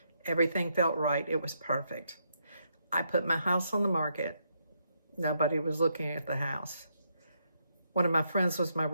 Everything felt right. It was perfect. I put my house on the market. Nobody was looking at the house. One of my friends was my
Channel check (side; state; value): both; inverted; correlation -0.77